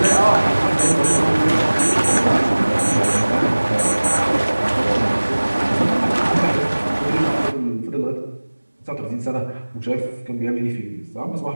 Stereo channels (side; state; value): both; inverted; correlation -1.00